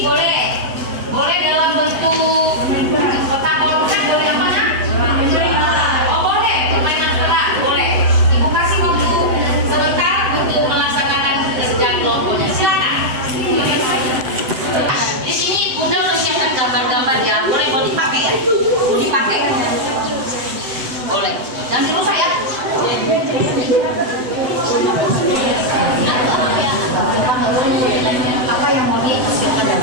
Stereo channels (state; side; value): late; left; 7.9 ms